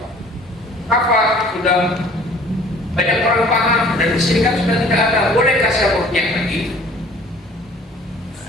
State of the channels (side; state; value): both; normal; correlation 0.51